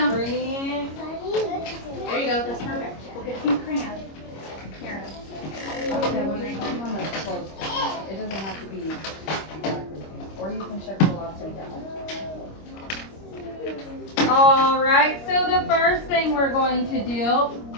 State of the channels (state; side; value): late; right; 25 ms